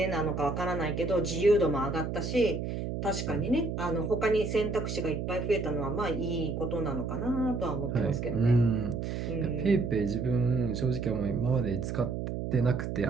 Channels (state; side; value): noise; right; hum, 4 dB below the sound